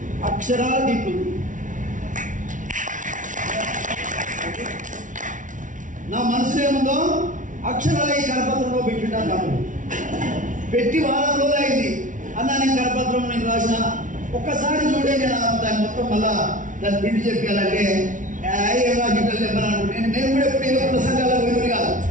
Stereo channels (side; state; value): left; late; 0.37 ms